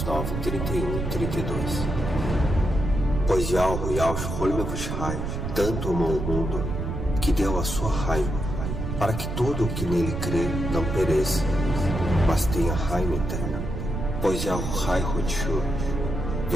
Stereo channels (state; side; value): noise; right; rumble, 4 dB below the sound